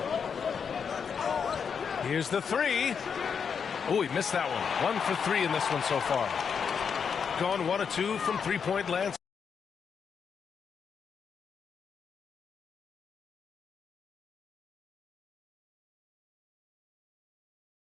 Here's the 3. Oh, he missed that one. 1 for 3 in this one so far. Gone 1 of 2 from three-point land.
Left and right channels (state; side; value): quieter; right; 6.6 dB